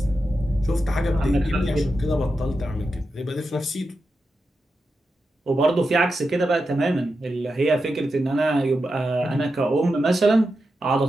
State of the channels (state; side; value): normal; both; correlation 0.89